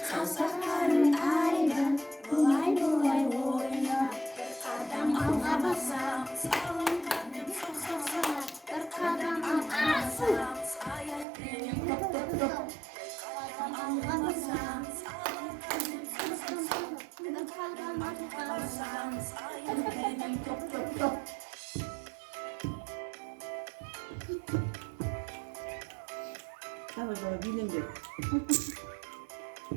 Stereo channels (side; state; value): left; drops out; at 11.2 s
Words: Tamam sonra bilindir.